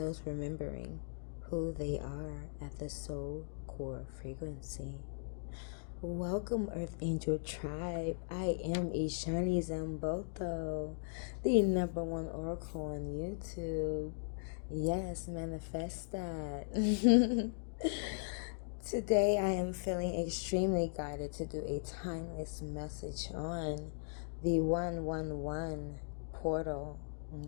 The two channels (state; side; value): silent; right; digital silence